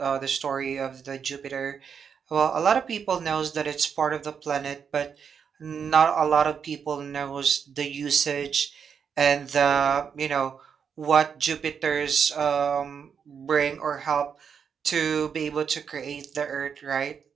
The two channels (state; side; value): quieter; left; 6.9 dB